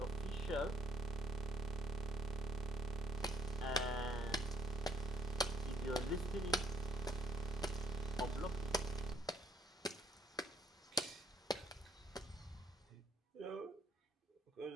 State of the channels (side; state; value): both; normal; correlation 0.67